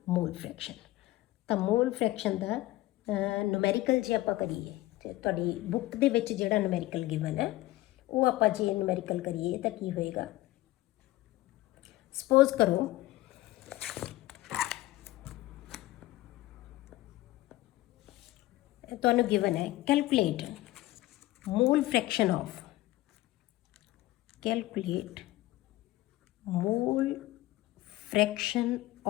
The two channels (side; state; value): right; quieter; 17.6 dB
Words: ਮੋਲ ਫ੍ਰੈਕਸ਼ਨ। ਤਾਂ ਮੋਲ ਫ੍ਰੈਕਸ਼ਨ ਦਾ ਨੂਮੈਰੀਕਲ ਜੇ ਆਪਾਂ ਕਰੀਏ, ਤੇ ਤੁਹਾਡੀ ਬੁੱਕ ਦੇ ਵਿੱਚ ਜਿਹੜਾ ਨੂਮੈਰੀਕਲ ਗਿਵਨ ਹੈ ਉਹ ਆਪਾਂ ਜੇ ਨੂਮੈਰੀਕਲ ਕਰੀਏ ਤਾਂ ਕੀ ਹੋਏਗਾ। ਸਪੋਜ਼ ਕਰੋ ਤੁਹਾਨੂੰ ਗਿਵਨ ਹੈ calculate mall fraction of